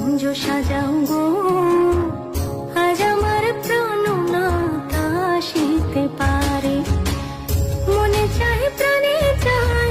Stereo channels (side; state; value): both; identical; correlation 1.00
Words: সাজাও গো, আজ আমার প্রাণনাথ আসিতে পারে। মনে চায় প্রাণে